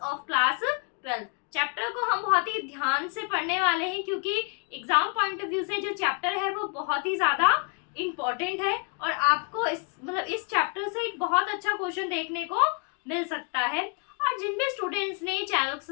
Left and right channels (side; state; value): right; quieter; 36.8 dB